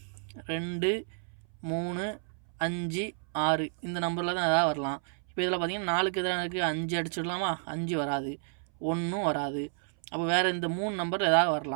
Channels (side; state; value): left; silent; 57 dB below the other